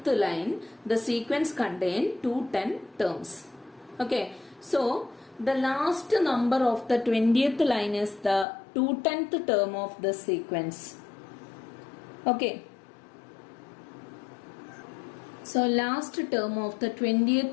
line, the sequence contain 210 terms. Okay, so the last number of the 20th line is the 210th term of the sequence. Okay, so last term of the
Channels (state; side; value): drops out; right; at 8.5 s